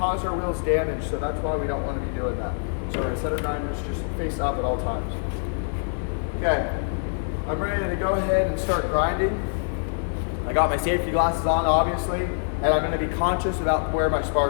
our wheels damage. So that's why we don't want to be doing that. So we're gonna set our grinders just face up at all times. Okay, I'm ready to go ahead and start grinding. I got my safety glasses on, obviously, and I'm gonna be conscious about where my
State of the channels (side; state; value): right; silent; 62 dB below the other